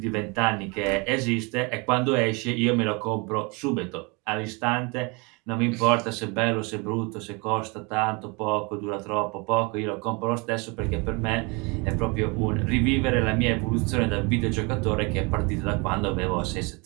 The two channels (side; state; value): left; quieter; 29.4 dB